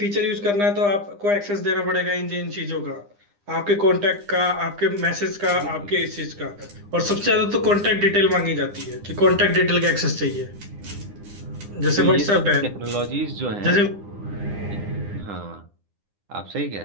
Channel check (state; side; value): late; left; 9.9 ms